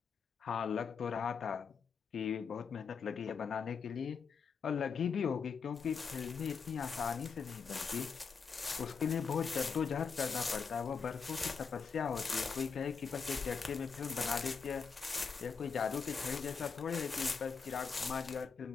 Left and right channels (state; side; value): quieter; right; 5.7 dB